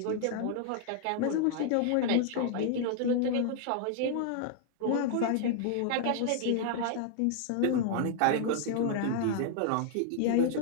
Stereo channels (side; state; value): both; different; correlation -0.01